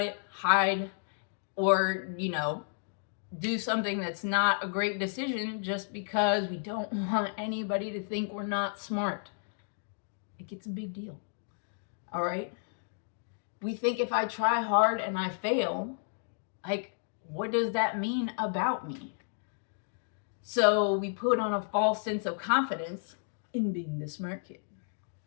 hide, or, do something that's not a great decision just because we don't want anybody to think we're not smart. It gets a big deal. All right? We think if I try hard and I fail, like, what does that mean about me? So we put on a false sense of confidence in being the smart kid,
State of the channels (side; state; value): right; silent; digital silence